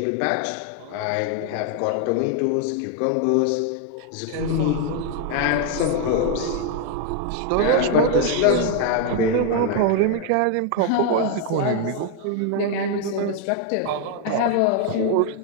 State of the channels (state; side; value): different; both; correlation 0.00